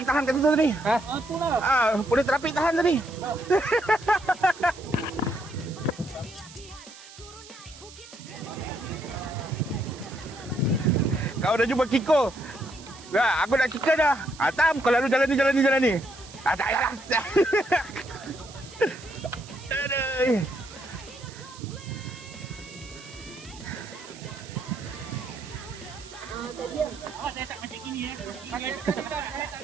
tahan kat situ tadi. Itulah. Boleh trafik tahan tadi. Kau dah jumpa Kiko? Ya, aku nak Kiko dah. Tam, kau lalu jalan ni. Tak payahlah. Aduh.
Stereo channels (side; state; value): right; noise; hiss, 18 dB below the sound